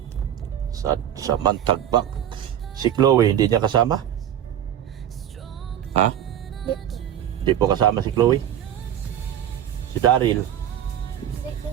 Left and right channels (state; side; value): quieter; left; 10.5 dB